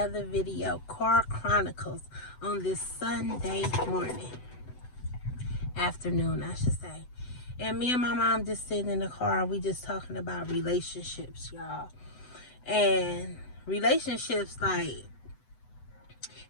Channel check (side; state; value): right; late; 8.0 ms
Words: video, Car Chronicles, on this Sunday morning. Afternoon, I should say. And me and my mom just sitting in the car, and we just talking about relationships, y'all. And relationships, like,